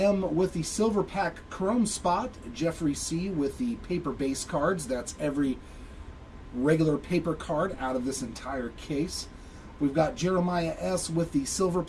with the Silver Pack Chrome spot. Jeffrey C. with the paper base cards. That's every regular paper card out of this entire case. We've got Jeremiah S. with the Silver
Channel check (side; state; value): both; identical; correlation 1.00